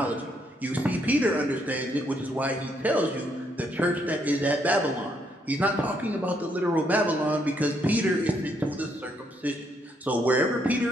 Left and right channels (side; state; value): both; normal; correlation 0.73